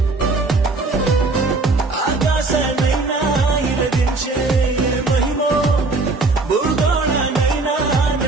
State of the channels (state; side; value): quieter; left; 3.5 dB